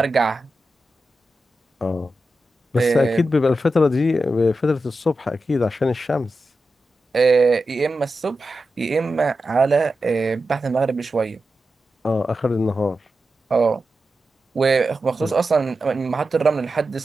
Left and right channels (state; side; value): normal; both; correlation 0.90